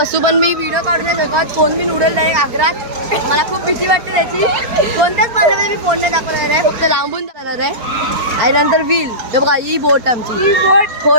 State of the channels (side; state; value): left; late; 4.4 ms